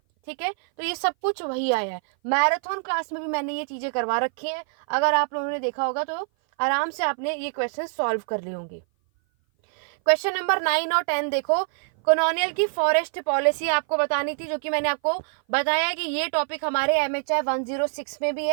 ठीक है, तो ये सब कुछ वही आया है। मैराथन क्लास में भी मैंने ये चीजें करवा रखी हैं, अगर आप लोगों ने देखा होगा तो आराम से आपने ये क्वेश्चन सॉल्व कर लिए होंगे। क्वेश्चन नंबर 9 और 10 देखो, कॉलोनियल की फॉरेस्ट पॉलिसी आपको बतानी थी, जो कि मैंने आपको बताया कि ये टॉपिक हमारे MHI 106 में भी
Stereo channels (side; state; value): left; silent; 58 dB below the other